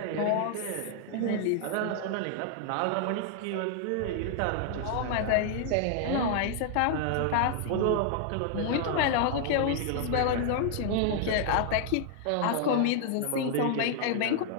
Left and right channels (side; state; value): both; different; correlation 0.00